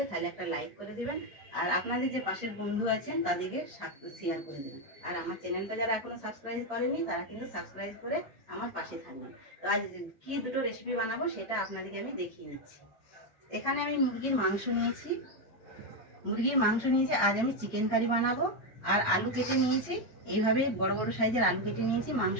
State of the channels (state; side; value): normal; both; correlation 0.06